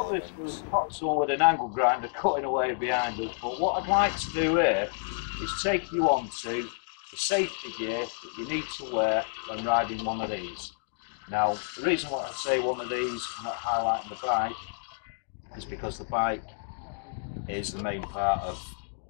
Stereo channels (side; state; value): right; silent; digital silence